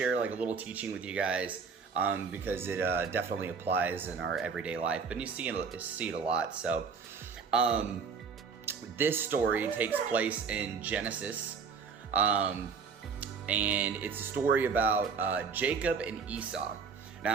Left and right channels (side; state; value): left; quieter; 5.6 dB